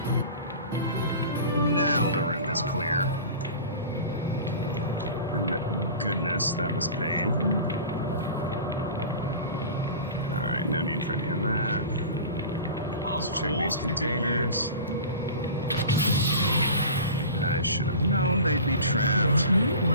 Now the room is clear. And goodness, that was pain. Alright, no need for any of that. Let's check these containers. I should have known they'd be trapped.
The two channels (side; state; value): both; inverted; correlation -0.37